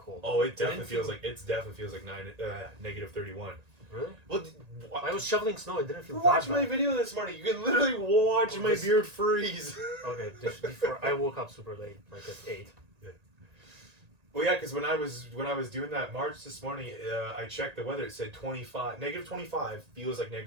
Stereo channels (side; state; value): left; late; 1.9 ms